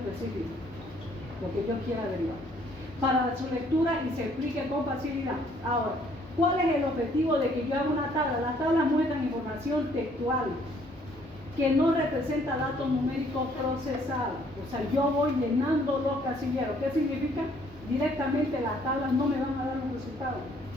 porque yo quiero averiguar. Para su lectura y se explique con facilidad. Ahora, ¿cuál es el objetivo de que yo haga una tabla? Las tablas muestran información textual que no representa datos numéricos procesados. O sea, yo voy llenando los casilleros. ¿Qué significa? Directamente las tablas no me van a dar los resultados,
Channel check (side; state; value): both; normal; correlation 0.63